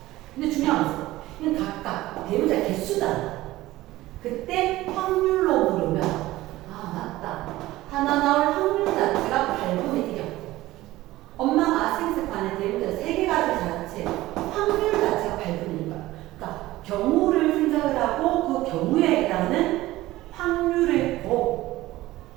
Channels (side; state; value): left; quieter; 17.1 dB